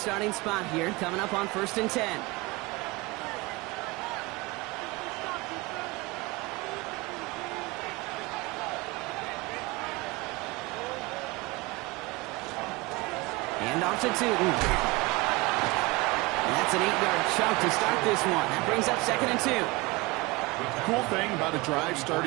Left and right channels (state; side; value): quieter; left; 23.4 dB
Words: spot here, coming up on 1st and 10. Hand off to Tootin. That's an 8-yard chunk to start this one. That brings up 2nd and 2. Cool thing about a drive